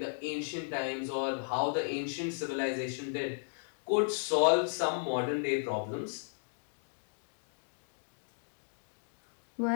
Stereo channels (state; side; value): silent; right; digital silence